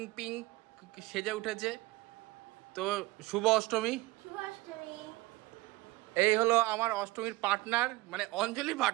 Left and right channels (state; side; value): quieter; left; 20.2 dB